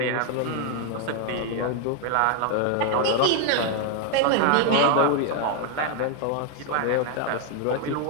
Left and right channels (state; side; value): different; both; correlation 0.01